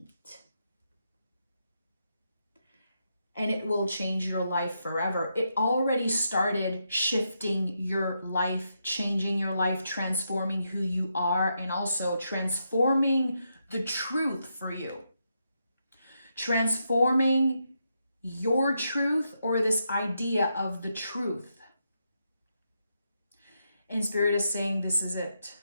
And it will change your life forever. It already started shifting your life, changing your life, transforming who you are, and also transforming the truth for you. Transforming your truth, or this idea of the truth. And Spirit is saying, this is it.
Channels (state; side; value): inverted; both; correlation -0.82